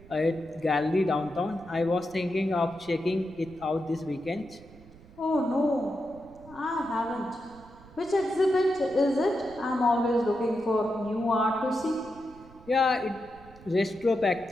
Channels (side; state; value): right; noise; rumble, 22 dB below the sound